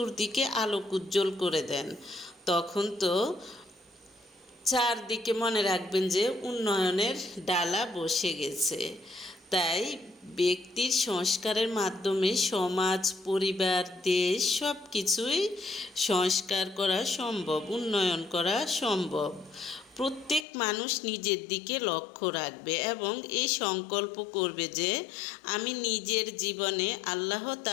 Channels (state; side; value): drops out; right; at 20.5 s